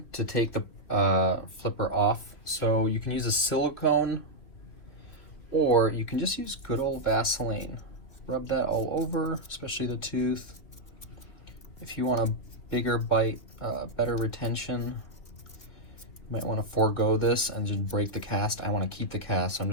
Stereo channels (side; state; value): right; late; 3.0 ms